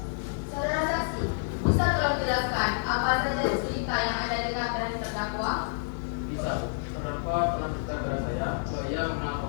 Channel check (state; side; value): silent; right; digital silence